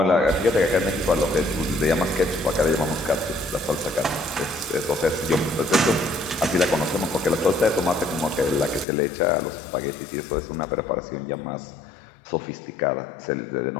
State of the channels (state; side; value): drops out; right; at 8.8 s